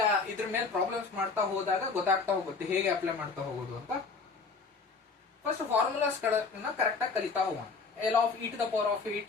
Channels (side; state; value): right; quieter; 4.5 dB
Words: ಇದ್ರ ಮೇಲೆ ಪ್ರಾಬ್ಲಮ್ಸ್ ಮಾಡ್ತಾ ಹೋದಾಗ ಗೊತ್ತಾಗ್ತಾ ಹೋಗುತ್ತೆ ಹೇಗೆ ಅಪ್ಲೈ ಮಾಡ್ತಾ ಹೋಗೋದು ಅಂತ. ಫಸ್ಟ್ ಫಾರ್ಮುಲಾಸ್ ಗಳನ್ನ ಕರೆಕ್ಟ್ ಆಗಿ ಕಲಿತಾ ಹೋಗೋಣ. L of e to the power of